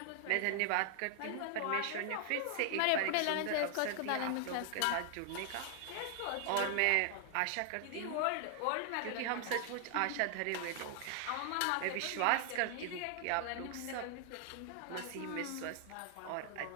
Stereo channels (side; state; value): both; different; correlation 0.00